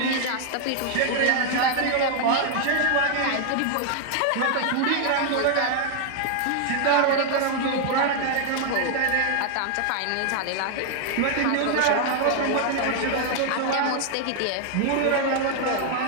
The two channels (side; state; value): both; different; correlation 0.00